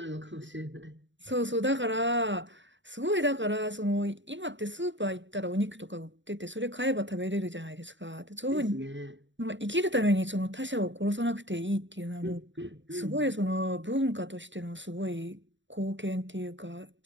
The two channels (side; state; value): left; late; 0.54 ms